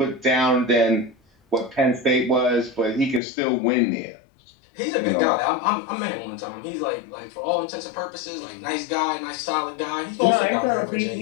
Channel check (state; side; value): drops out; right; at 3.2 s